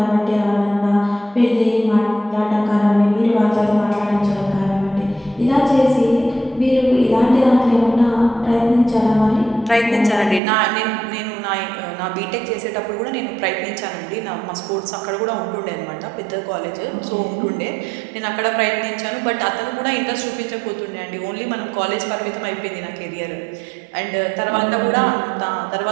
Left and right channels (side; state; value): left; drops out; at 10.4 s